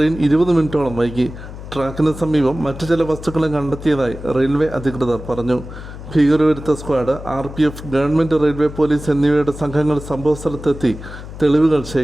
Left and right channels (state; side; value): noise; left; hum, 12 dB below the sound